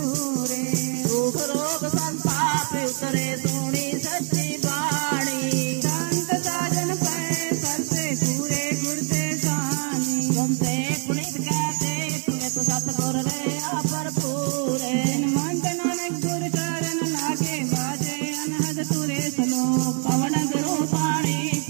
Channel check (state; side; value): quieter; left; 39.3 dB